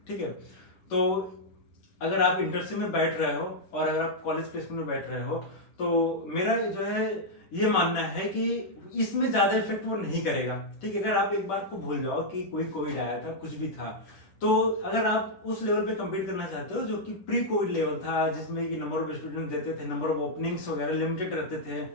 ठीक है, तो अगर आप इंटर्नशिप में बैठ रहे हो और अगर आप कॉलेज प्लेसमेंट में बैठ रहे हो तो मेरा जो है ये मानना है कि इसमें ज्यादा इफेक्ट वो नहीं करेगा. ठीक है, अगर आप एक बात को भूल जाओ कि कोई कोविड आया था, कुछ भी था, तो अगर आप उस लेवल पे कम्पीट करना चाहते हो जो कि प्री कोविड लेवल था जिसमें कि नंबर ऑफ स्टूडेंट देते थे, नंबर ऑफ ओपनिंग्स वगैरह लिमिटेड रहते थे,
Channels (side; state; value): right; late; 10 ms